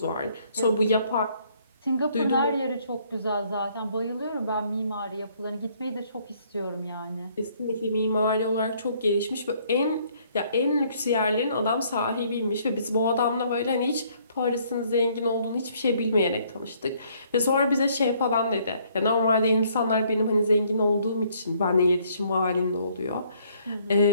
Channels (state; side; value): inverted; both; correlation -0.65